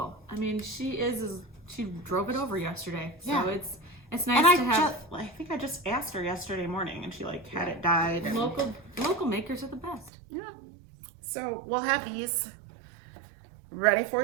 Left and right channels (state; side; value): drops out; left; at 10.1 s